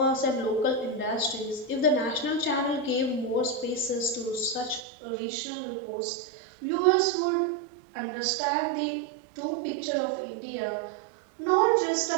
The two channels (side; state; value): left; drops out; at 4.8 s